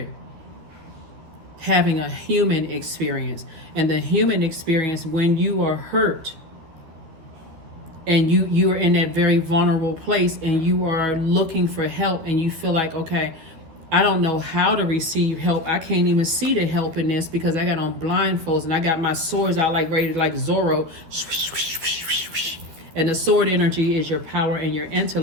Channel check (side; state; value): left; late; 13 ms